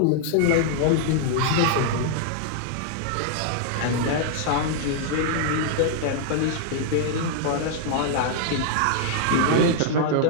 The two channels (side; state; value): both; different; correlation -0.01